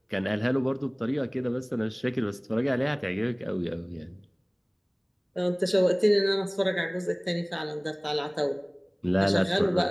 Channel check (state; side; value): identical; both; correlation 1.00